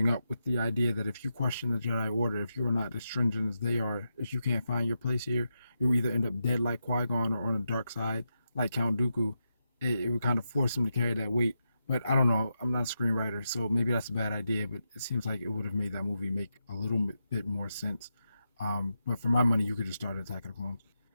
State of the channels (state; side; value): inverted; both; correlation -0.86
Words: up with the idea that if you question the Jedi Order, if you are not as stringent as they are, if you can't find your place here, you'll either end up dead like Qui-Gon or on the dark side like Count Dooku. It would kind of force him to carry that weight. But I don't know. I'm not a screenwriter, so maybe that's a bad idea. But it seems like it would have made that movie make a little bit more sense. But for my money, you could just start Attack of the Clones.